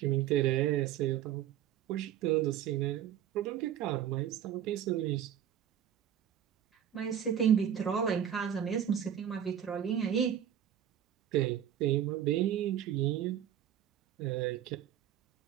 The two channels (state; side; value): quieter; left; 10.1 dB